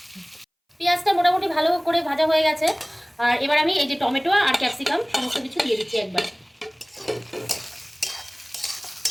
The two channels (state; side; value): identical; both; correlation 1.00